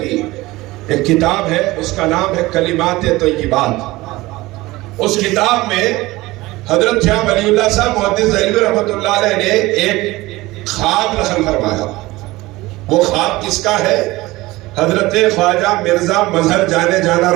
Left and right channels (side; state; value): left; quieter; 19.6 dB